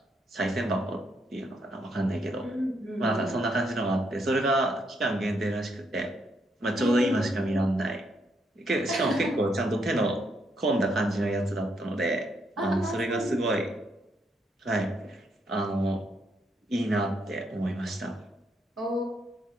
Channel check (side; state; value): both; normal; correlation 0.76